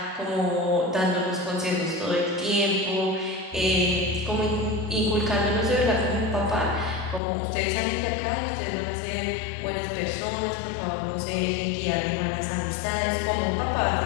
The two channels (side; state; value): right; drops out; at 7.2 s